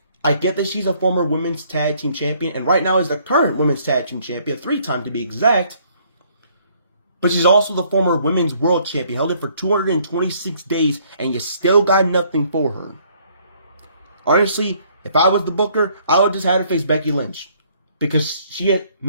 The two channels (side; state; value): both; inverted; correlation -0.64